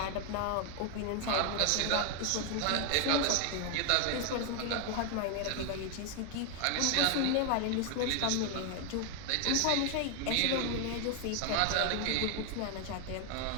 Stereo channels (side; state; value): both; different; correlation 0.00